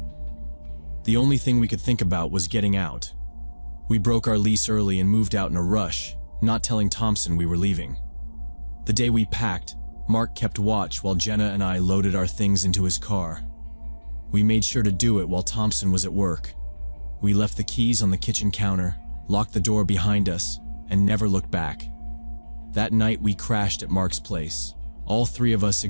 The only thing we could think about was getting out. We broke our lease early and moved out in a rush, not telling Thompson we were leaving. The day we packed, Mark kept watch while Jenna and I loaded our things into his car. We made sure to do it while Thompson was at work. We left the keys on the kitchen counter, locked the door behind us, and never looked back. That night we crashed at Mark's place, all three of us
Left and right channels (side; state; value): both; inverted; correlation -1.00